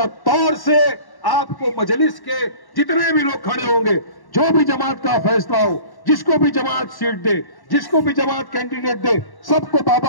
तौर से आपको मजलिस के जितने भी लोग खड़े होंगे, जो भी जमात का फैसला हो, जिसको भी जमात सीट दे, जिसको भी जमात कैंडिडेट दे, सबको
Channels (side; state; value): right; late; 1.1 ms